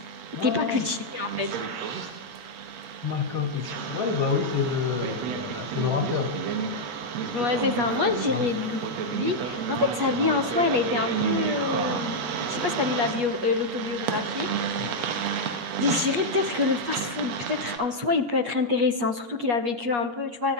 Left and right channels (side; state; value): left; late; 8.4 ms